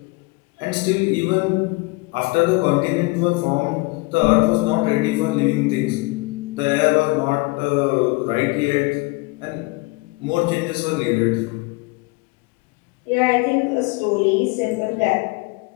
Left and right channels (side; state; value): right; quieter; 25.2 dB